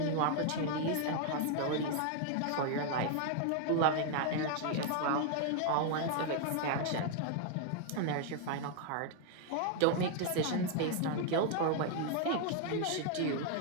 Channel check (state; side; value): different; both; correlation 0.00